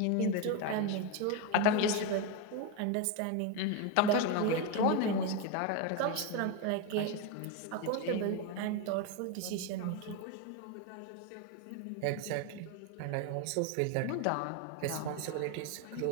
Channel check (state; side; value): different; both; correlation 0.02